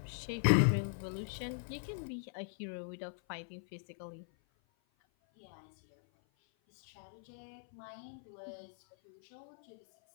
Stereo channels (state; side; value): silent; right; 51 dB below the other